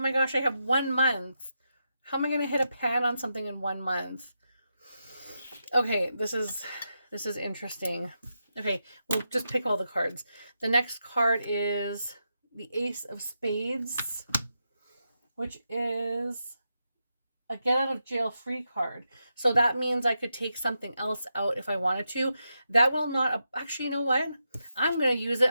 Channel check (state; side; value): inverted; both; correlation -0.86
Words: gosh, I have 1 month. How am I going to hit a pan on something in 1 month? Okay, this is interesting. Okay, we'll just pick all the cards. The next card is the Ace of Spades, which is a get out of jail free card. So that means I could take something else out if I wanted to. That will not, actually, you know what? I'm going to use